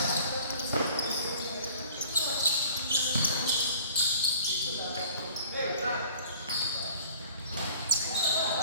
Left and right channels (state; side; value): inverted; both; correlation -0.49